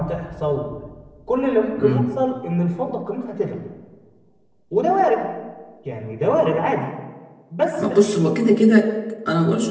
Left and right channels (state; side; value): identical; both; correlation 1.00